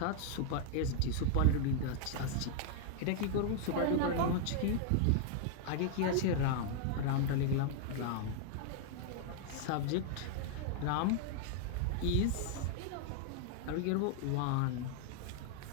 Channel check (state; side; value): different; both; correlation 0.00